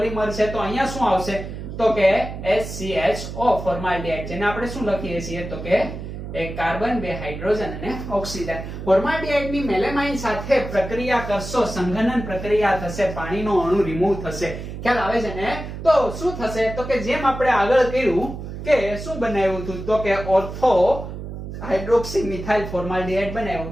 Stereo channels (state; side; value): noise; right; hum, 9 dB below the sound